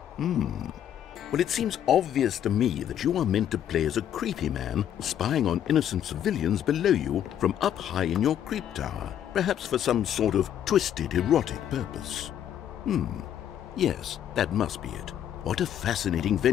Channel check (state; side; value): quieter; right; 10.2 dB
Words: Well, it seems obvious to me that you are meant to play as a creepy man spying on innocent civilians below you from up high in your creep tower, perhaps for some sort of twisted erotic purpose. Yes, that must be it. What a fascinating